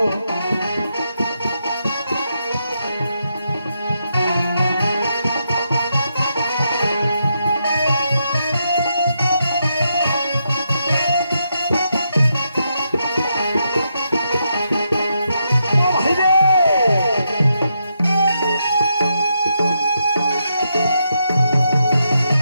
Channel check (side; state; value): both; inverted; correlation -0.81